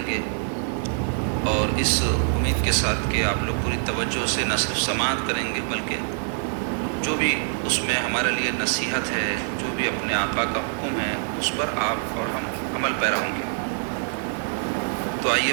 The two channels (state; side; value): silent; left; digital silence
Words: گے، اور اس امید کے ساتھ کہ آپ لوگ پوری توجہ سے نہ صرف سماعت کریں گے بلکہ جو بھی اس میں ہمارے لیے نصیحت ہے، جو بھی اپنے آقا کا حکم ہے، اس پر آپ اور ہم عمل پیرا ہوں گے۔ تو آئیے